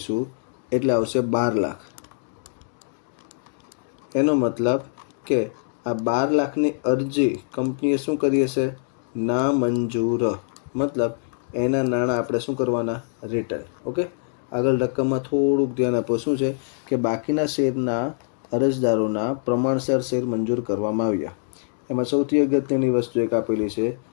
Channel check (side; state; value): right; silent; digital silence